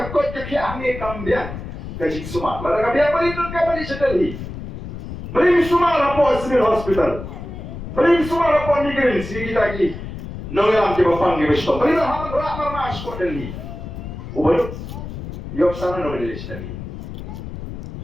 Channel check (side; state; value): left; noise; rumble, 9 dB below the sound